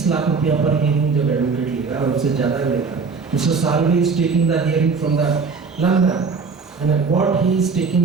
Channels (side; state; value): left; quieter; 4.9 dB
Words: लाख रुपया पर हियरिंग जब एडवोकेट लेगा और उससे ज़्यादा भी लेगा, mister Salve is taking the hearing from the London and what he is